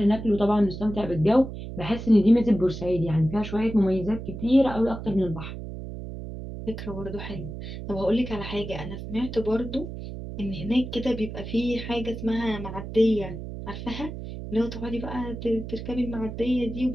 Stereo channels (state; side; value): noise; right; hum, 9 dB below the sound